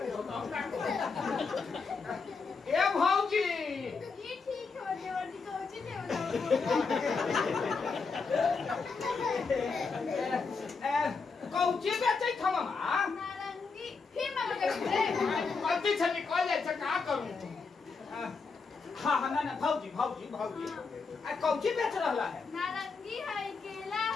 ए भौजी, ये ठीक है, वर्दी कोची थे बताओ। कौची बेचै था मामा? नारंगी फिर मामा के रे। गलती से निकल जाए तो का करूं? हाँ ना भौजी कौची बेच रहा है? नारंगी है, केला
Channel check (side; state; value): right; quieter; 4.8 dB